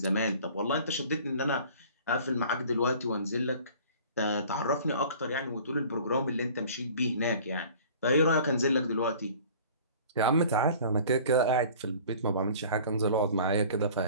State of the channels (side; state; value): both; inverted; correlation -0.47